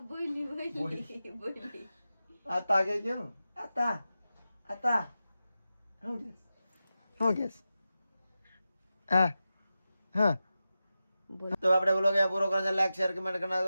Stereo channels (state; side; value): inverted; both; correlation -0.93